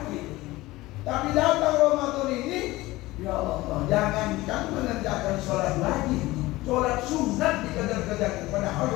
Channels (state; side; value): quieter; right; 19.0 dB